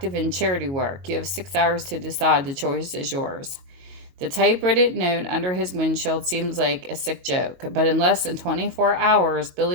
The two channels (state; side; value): late; left; 22 ms